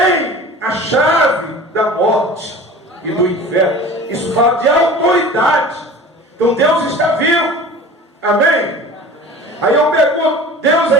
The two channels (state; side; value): normal; both; correlation 0.39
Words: a chave da morte e do inferno. Isso fala de autoridade. Então Deus está vivo. Amém? Aí eu pergunto: Deus